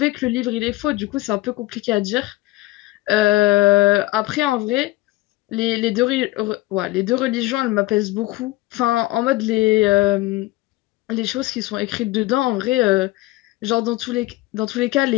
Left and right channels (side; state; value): right; quieter; 18.2 dB